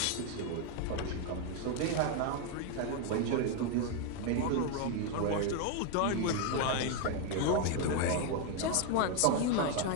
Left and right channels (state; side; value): different; both; correlation 0.01